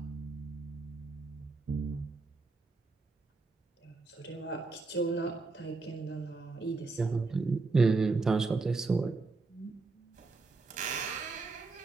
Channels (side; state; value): left; quieter; 3.9 dB